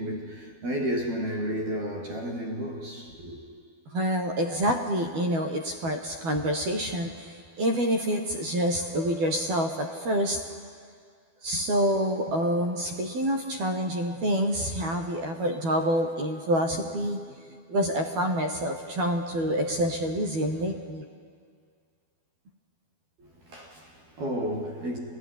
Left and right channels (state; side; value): late; left; 12 ms